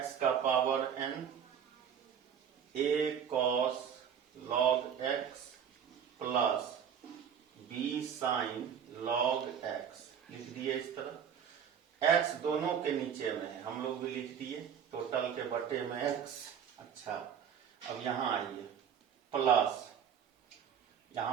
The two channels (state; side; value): quieter; left; 8.1 dB